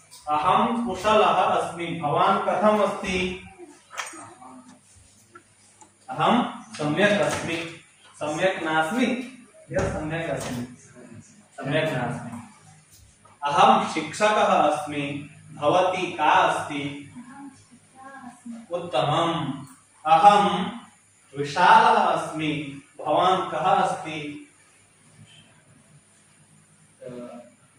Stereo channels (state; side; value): identical; both; correlation 1.00